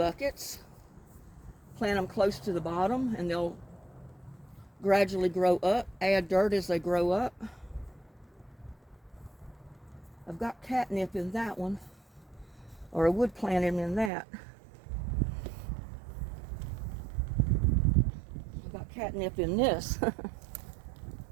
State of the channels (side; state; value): left; drops out; at 14.1 s